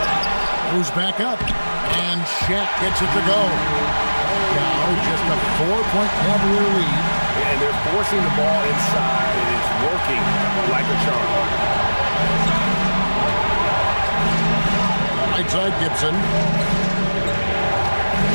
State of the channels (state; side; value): inverted; both; correlation -1.00